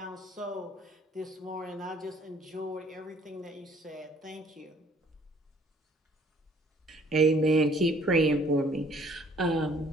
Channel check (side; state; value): both; normal; correlation 0.59